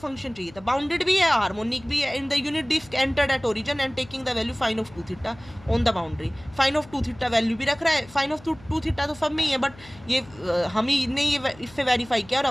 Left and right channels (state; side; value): noise; left; hum, 22 dB below the sound